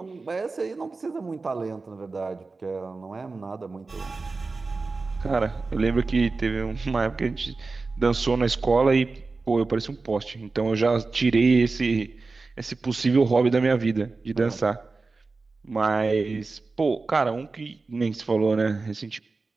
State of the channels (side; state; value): left; quieter; 3.9 dB